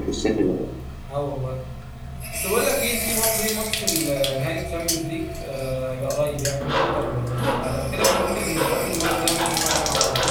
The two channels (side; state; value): both; identical; correlation 1.00